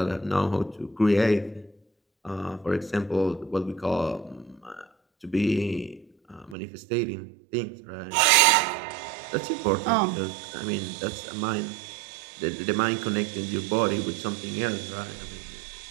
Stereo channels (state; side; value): drops out; left; at 6.6 s